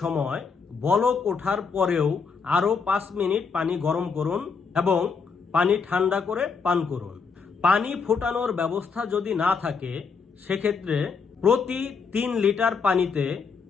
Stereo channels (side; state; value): right; quieter; 5.3 dB